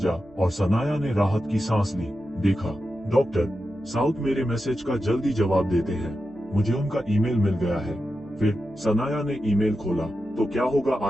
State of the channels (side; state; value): right; noise; hum, 27 dB below the sound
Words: और सनाया ने राहत की सांस ली। देखा, डॉक्टर साउथ मेरे मैसेज का जल्दी जवाब देते हैं, मुझे उनका ईमेल मिल गया है। फिर सनाया ने ईमेल खोला। तो क्या होगा